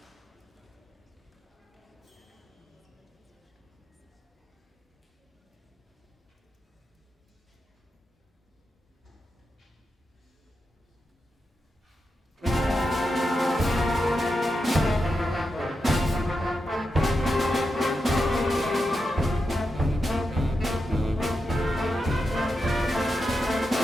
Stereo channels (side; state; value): both; normal; correlation 0.88